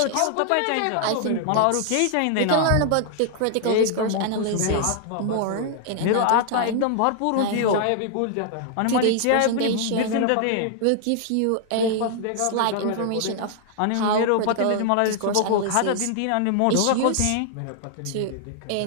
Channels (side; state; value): both; different; correlation 0.00